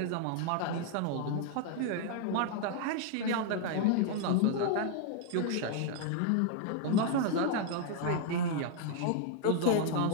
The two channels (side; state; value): both; different; correlation 0.00